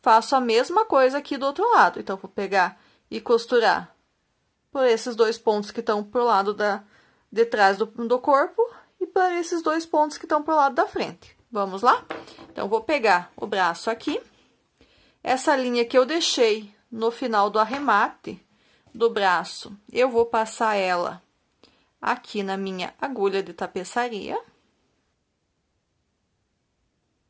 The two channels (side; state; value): both; identical; correlation 1.00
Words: Faço a mesma coisa aqui do outro lado, então vou pegar e costurar por esses 2 pontos que estão pro lado de trás do corpo e por esses 2 pontos que estão pro lado da frente. Vamos lá? Então, vou pegar o braço aqui, essa linha que eu deixei no final do arremate do braço, eu vou passar ela aqui na minha agulha de tapeçaria.